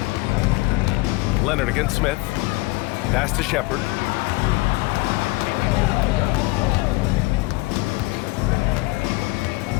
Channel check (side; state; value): right; quieter; 22.4 dB